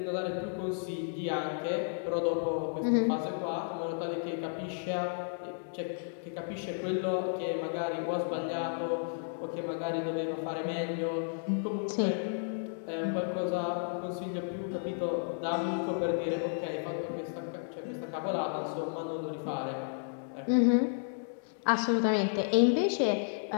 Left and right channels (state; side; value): silent; right; digital silence